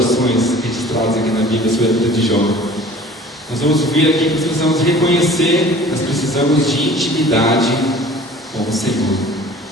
registradas aqui na Bíblia sobre a vida de Jó. Nós vamos ver aqui que nós precisamos reconhecer, nós precisamos de intimidade com o Senhor.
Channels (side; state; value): both; normal; correlation 0.46